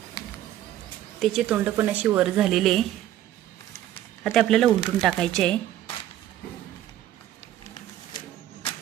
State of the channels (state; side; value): quieter; left; 12.7 dB